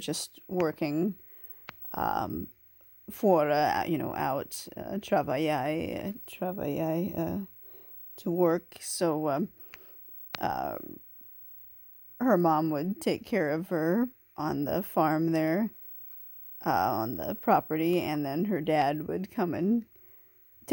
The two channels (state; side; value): identical; both; correlation 1.00